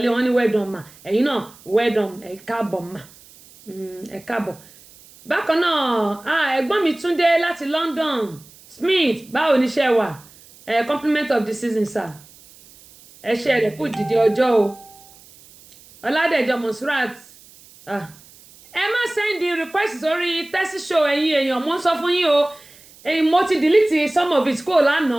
wọn ní well done mà ẹ̀yin náà well done ẹ káàbọ̀ mà ẹ káàbọ̀ bákan náà ẹ̀gbọ́n mi Túndé láti London Smith báwo ni iṣẹ́ wà compliment of the season sir ẹṣẹ́ rẹ̀ kù dìde ọjọ́ o Ọládẹ̀jọ Monsurat ẹ má send request sórí tẹ́sí show ẹ̀yin èèyàn mo ń sọ fún yín o mo ti delete some of it kó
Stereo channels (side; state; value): right; noise; hiss, 24 dB below the sound